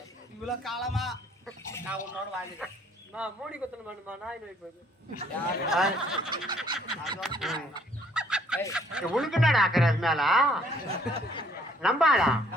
இவ்வளவு காலமா நான் உன்னோட வாழ்ந்துட்டேன் நான் மூடி கொத்தணும் வேணுமா நாய் நோய் போகுது உனக்குன்னா ஆக்குற அது மேல நம்பாளா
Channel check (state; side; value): normal; both; correlation 0.62